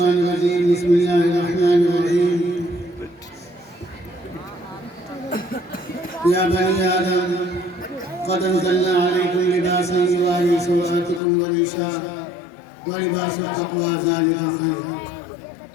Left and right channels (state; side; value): drops out; right; at 11.2 s